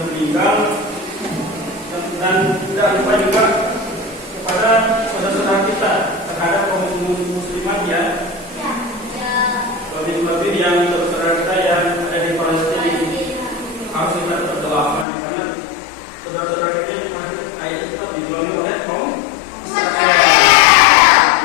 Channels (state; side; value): drops out; right; at 15.1 s